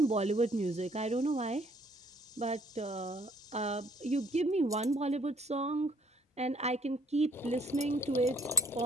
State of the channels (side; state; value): both; normal; correlation 0.63